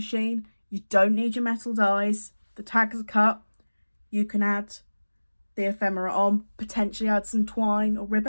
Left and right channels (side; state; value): both; inverted; correlation -1.00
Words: You don't need your metal dies. The tags are cut. You can add the ephemera on, potentially add some twine or